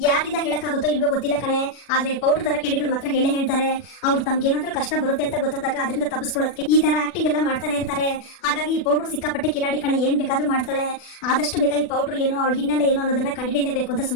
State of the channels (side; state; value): right; late; 40 ms